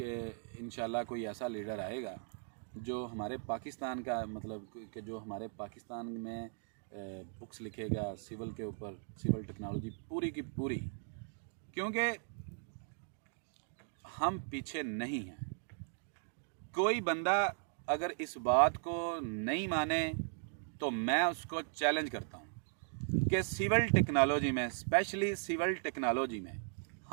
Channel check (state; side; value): silent; left; digital silence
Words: इंशाल्लाह कोई ऐसा leader आएगा जो हमारे पाकिस्तान का, मतलब कि जो हमारे पाकिस्तान में बुक्स लिखेगा सिविल के ऊपर, सिविल टेक्नोलॉजी पूरी की पूरी, क्योंकि हम पीछे नहीं हैं। कोई बंदा अगर इस बात को नहीं माने तो मैं उसको चैलेंज करता हूँ कि सिविल टेक्नोलॉजी में, स्पेशली सिविल टेक्नोलॉजी में